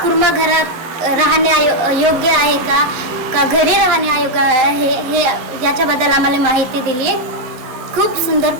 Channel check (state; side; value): late; left; 12 ms